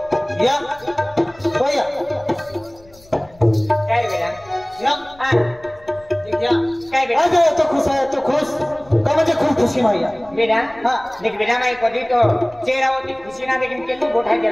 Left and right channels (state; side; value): noise; left; rumble, 26 dB below the sound